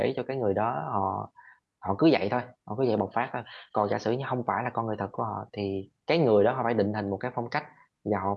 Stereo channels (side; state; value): both; identical; correlation 1.00